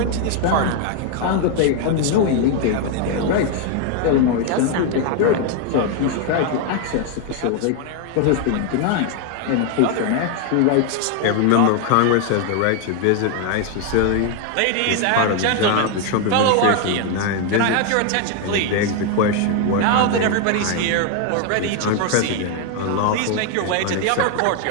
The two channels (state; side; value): different; both; correlation 0.01